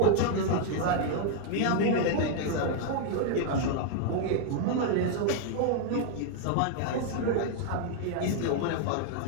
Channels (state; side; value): different; both; correlation 0.00